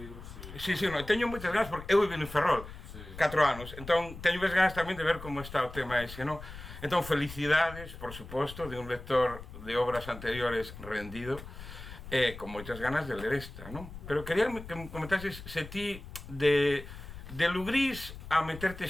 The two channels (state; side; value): noise; left; rumble, 13 dB below the sound